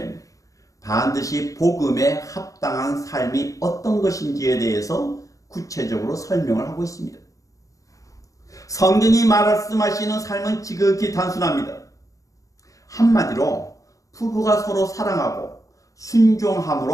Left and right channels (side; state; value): right; late; 0.16 ms